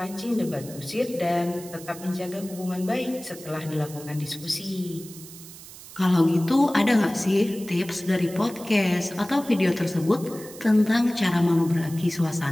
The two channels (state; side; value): noise; right; hiss, 16 dB below the sound